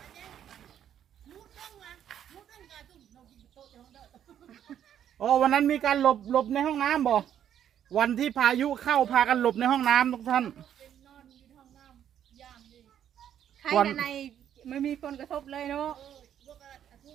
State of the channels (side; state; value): left; quieter; 9.9 dB